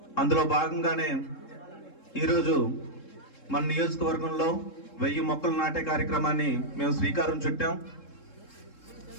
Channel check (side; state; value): right; late; 3.7 ms